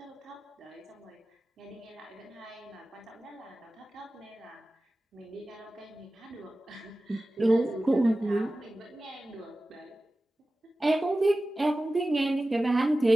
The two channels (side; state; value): both; normal; correlation 0.96